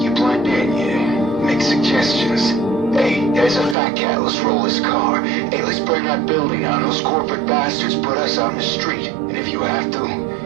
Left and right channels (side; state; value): left; drops out; at 3.8 s